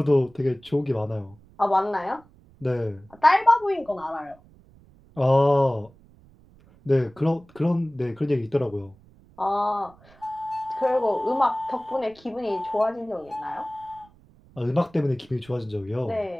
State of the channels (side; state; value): right; noise; rumble, 27 dB below the sound